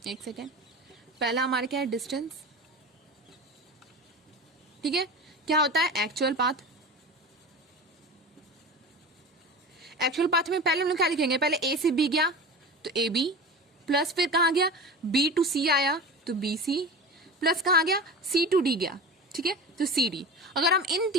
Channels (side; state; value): both; normal; correlation 0.32